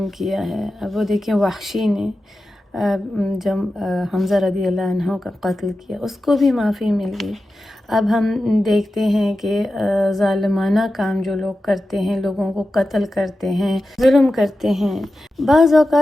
کیا ہے، اب وہ دیکھیں وحشی نے جب حمزہ رضی اللہ عنہ کا قتل کیا، اس کو بھی معافی مل گئی۔ اب ہم دیکھتے ہیں کہ ظالمانہ کام جو لوگ کرتے ہیں، لوگوں کو قتل کرتے ہیں، ظلم کرتے ہیں، بعض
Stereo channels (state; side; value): normal; both; correlation 0.92